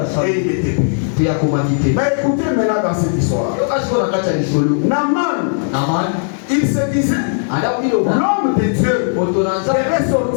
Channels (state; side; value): silent; right; 56 dB below the other